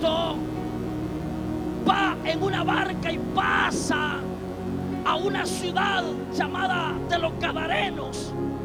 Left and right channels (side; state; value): both; identical; correlation 1.00